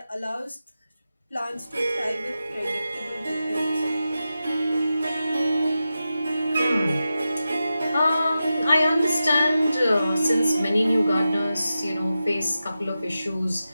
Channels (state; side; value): inverted; both; correlation -0.92